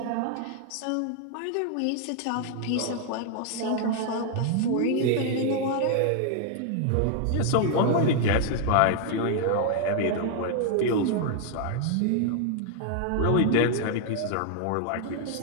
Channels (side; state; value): both; different; correlation 0.00